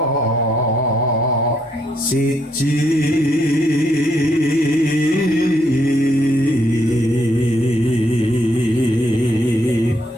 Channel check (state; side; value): normal; both; correlation 0.73